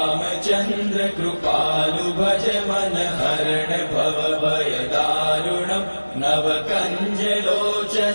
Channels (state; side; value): inverted; both; correlation -1.00